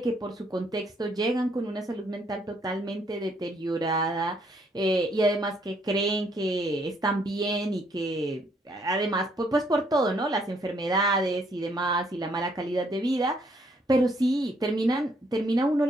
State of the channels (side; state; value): both; normal; correlation 0.69